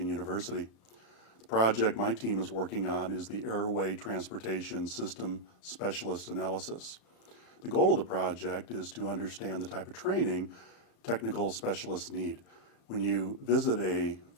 University. The project my team is working on is the Airway Transportation System Specialist Analysis. The goal of the project is to understand the type of training technical specialists need. When you visit a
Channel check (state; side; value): late; right; 35 ms